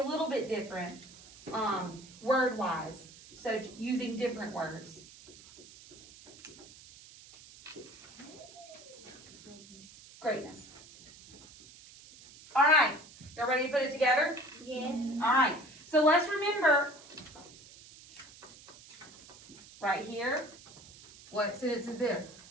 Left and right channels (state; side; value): noise; right; hiss, 20 dB below the sound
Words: little bit different, word-wise. So using different words. Greatness. All right, y'all ready to put it together? Yes. All right, so let's remember, right here, what sentence is this?